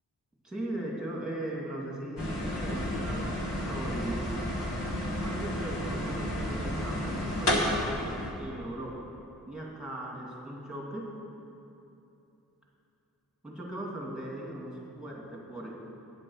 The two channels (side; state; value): both; normal; correlation 0.53